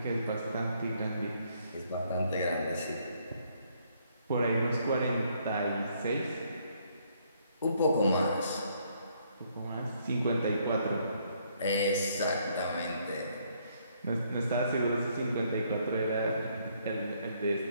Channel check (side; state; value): both; inverted; correlation -0.69